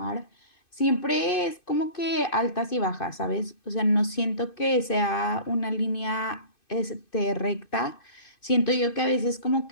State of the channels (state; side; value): late; right; 2.5 ms